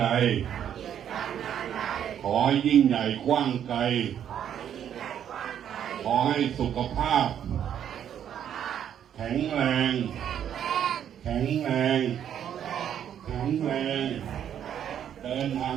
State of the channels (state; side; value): quieter; left; 9.5 dB